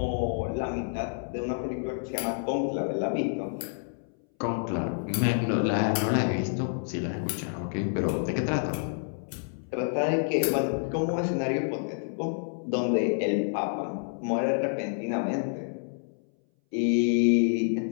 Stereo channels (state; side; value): silent; right; 59 dB below the other